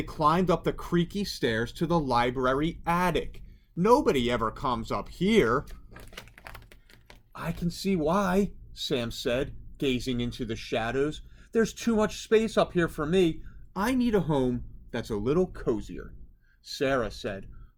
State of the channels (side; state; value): both; identical; correlation 1.00